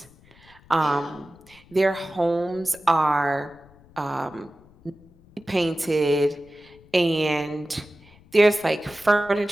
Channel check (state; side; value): noise; left; rumble, 27 dB below the sound